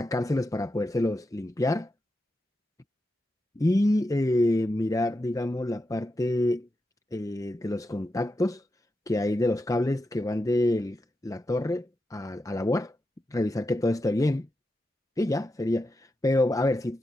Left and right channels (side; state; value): both; normal; correlation 0.88